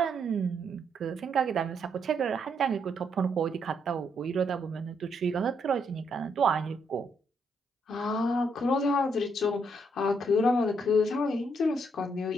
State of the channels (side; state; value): both; normal; correlation 0.75